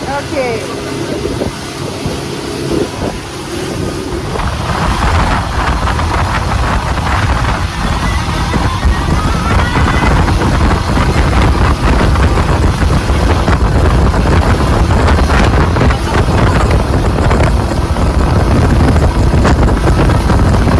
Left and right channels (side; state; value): both; identical; correlation 1.00